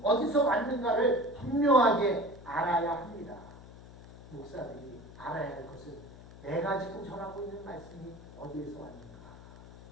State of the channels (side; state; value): left; noise; hum, 18 dB below the sound